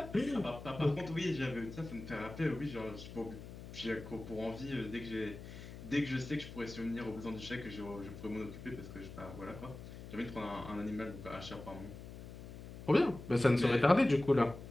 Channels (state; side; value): noise; left; hum, 12 dB below the sound